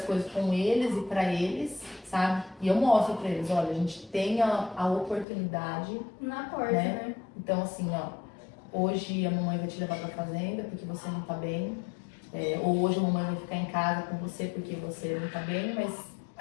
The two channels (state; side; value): drops out; right; at 5.2 s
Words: coisas com eles e para eles, sabe? E eu mostro para eles, olha, a gente tem a oportunidade na porta, né? Então, assim, hoje a mamãe vai te levar para a fazenda porque você não tá bem, ou hoje a mamãe vai ficar em casa com você porque você não tá bem, mas